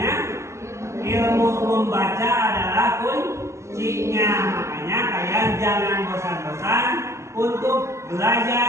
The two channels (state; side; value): late; left; 0.13 ms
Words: ilmu membaca adalah kuncinya. Makanya kalian jangan bosan-bosan untuk